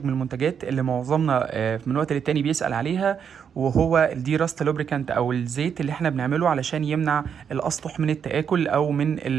من المنتجات اللي معظمنا من وقت للتاني بيسأل عليها، وهو الدي راست لوبريكانت أو الزيت اللي احنا بنعمله علشان يمنع الأسطح من التآكل أو من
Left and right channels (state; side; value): quieter; left; 7.5 dB